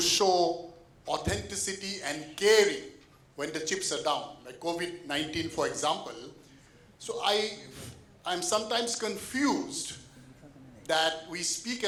show authenticity and caring when the chips are down, like COVID-19, for example. So I'm sometimes confused that we speak a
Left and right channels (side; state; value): both; identical; correlation 1.00